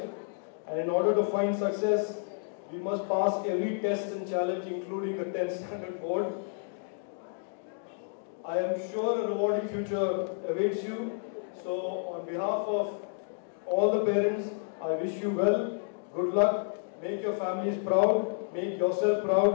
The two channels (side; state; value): right; silent; digital silence